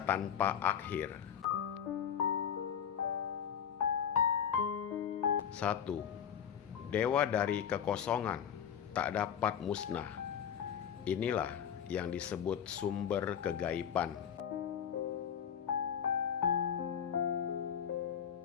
tanpa akhir. 1. Dewa dari kekosongan tak dapat musnah. Inilah yang disebut sumber kegaiban.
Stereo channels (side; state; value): right; quieter; 8.3 dB